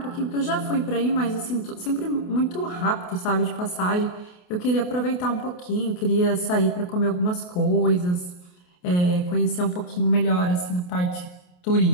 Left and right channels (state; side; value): late; right; 28 ms